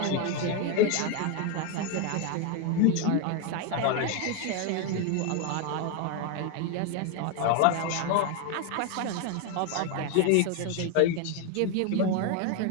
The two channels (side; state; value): both; different; correlation 0.01